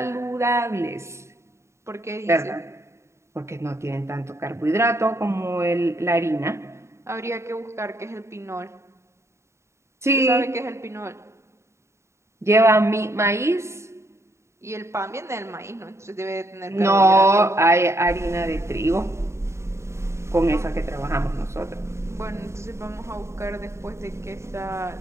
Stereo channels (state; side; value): late; left; 0.13 ms